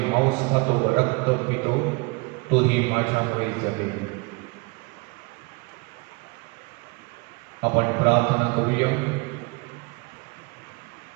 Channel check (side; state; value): left; quieter; 27.8 dB